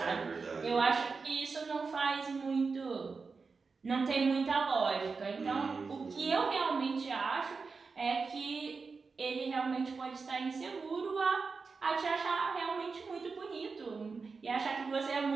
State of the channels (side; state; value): left; quieter; 4.7 dB